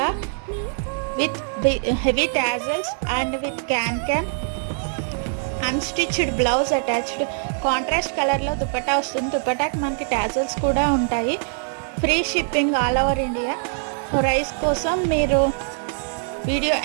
with heavy tassels and with can unstitched blouse attached. Contrast కలర్లో దుపట్టా వస్తుంది. దుపట్టాకి మనకి టాజల్స్ కూడా ఉంటాయి. Free shipping all over India. Price కోసం మీరు వీడియో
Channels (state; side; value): silent; left; 56 dB below the other